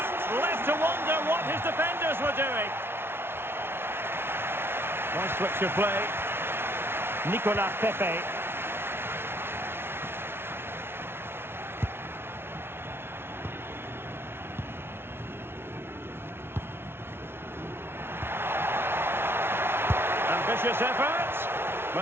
left to wonder what his defenders were doing. Nice switch of play. Nicolas Pepe. Ambitious effort.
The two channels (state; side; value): late; left; 0.11 ms